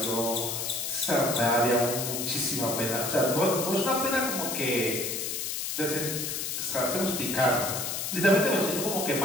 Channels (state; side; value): noise; left; hiss, 3 dB below the sound